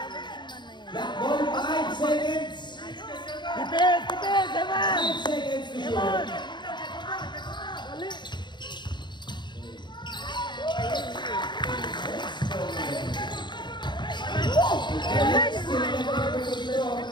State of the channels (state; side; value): late; right; 0.22 ms